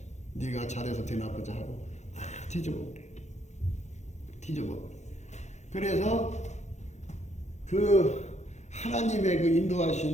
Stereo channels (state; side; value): late; right; 0.33 ms